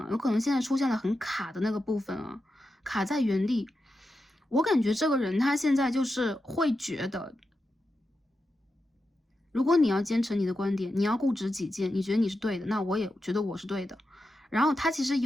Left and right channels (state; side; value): normal; both; correlation 0.89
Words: 有可能现在出现了很卡的那个部分啊，卡在原地。我感觉这个人他现在就是会觉得，如果你要坚持你的观点，你要固执己见，你觉得你是对的，那我也觉得我是对的。然后他其实